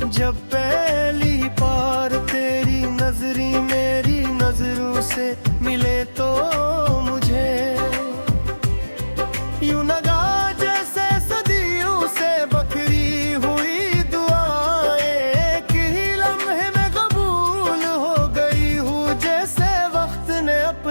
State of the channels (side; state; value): both; inverted; correlation -1.00